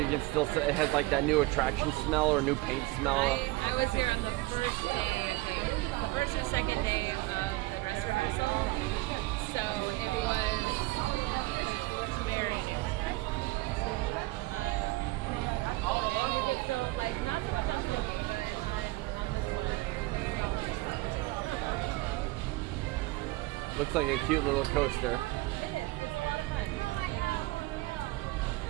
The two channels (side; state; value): left; quieter; 21.0 dB